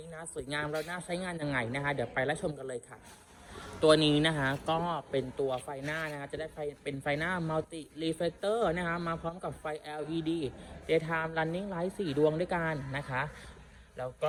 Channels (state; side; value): identical; both; correlation 1.00